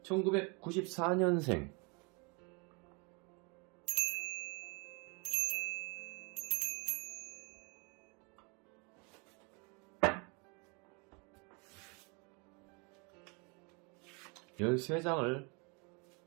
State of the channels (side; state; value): left; quieter; 31.8 dB